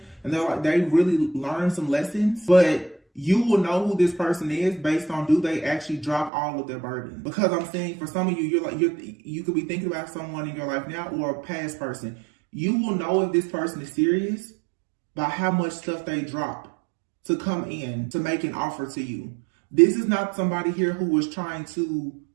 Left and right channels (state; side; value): drops out; left; at 6.3 s